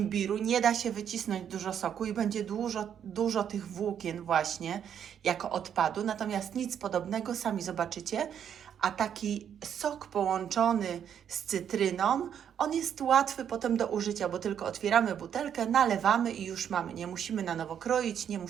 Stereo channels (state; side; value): quieter; left; 8.8 dB